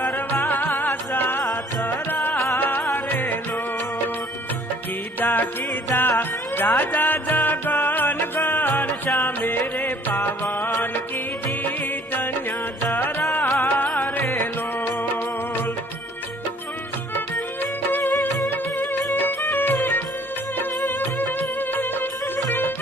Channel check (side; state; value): both; normal; correlation 0.57